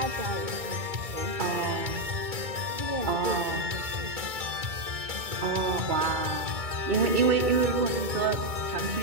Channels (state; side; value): late; left; 2.2 ms